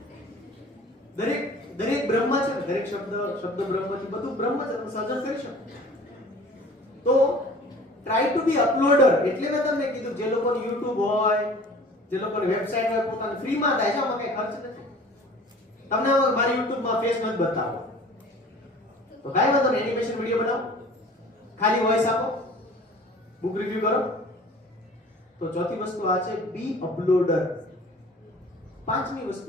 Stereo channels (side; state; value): both; normal; correlation 0.46